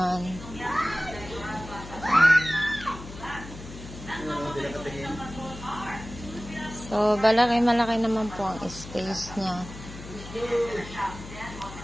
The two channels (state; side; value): noise; left; hum, 13 dB below the sound